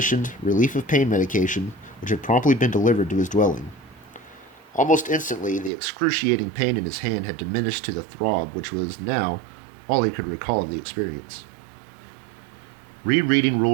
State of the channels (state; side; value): drops out; left; at 5.7 s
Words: relief of pain medication, which had promptly been delivered to his dwelling. Almost instantly, the excruciating pain in his hand had diminished to the throb which was now all he could recall of the experience. Rereading